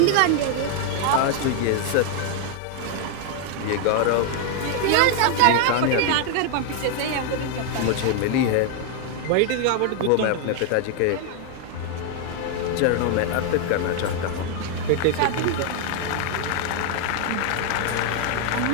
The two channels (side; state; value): both; different; correlation 0.01